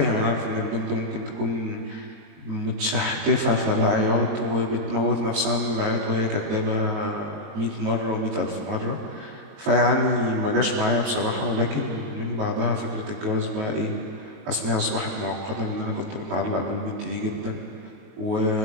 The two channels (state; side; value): late; left; 22 ms